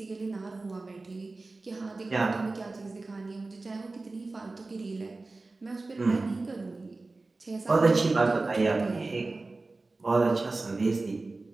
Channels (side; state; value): left; quieter; 3.4 dB